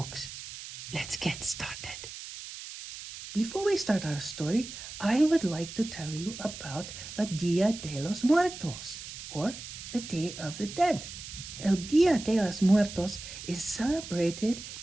Let's get started. Before we start our story, I would like to tell you about La Dia de los Muertos, or the Day of the Dead. El Dia de los Muertos is celebrated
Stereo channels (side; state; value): right; noise; hiss, 11 dB below the sound